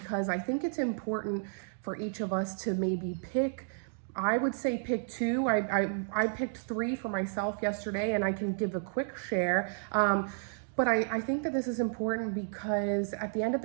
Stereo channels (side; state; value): left; silent; digital silence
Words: I think it's important for each of us to maybe pick. I would say pick 2. I picked 3 for myself yesterday, and I can give a quick share. But I think that this is important because at the end of